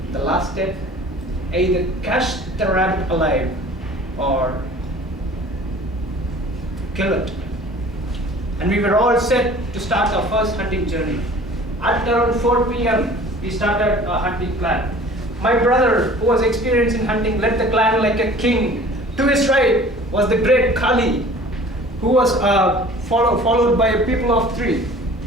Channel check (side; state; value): both; normal; correlation 0.46